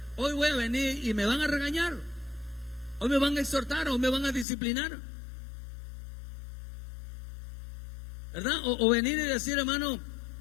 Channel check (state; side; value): drops out; right; at 4.5 s